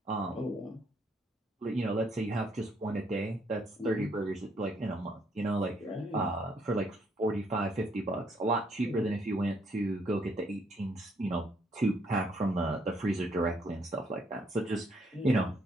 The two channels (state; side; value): normal; both; correlation 0.70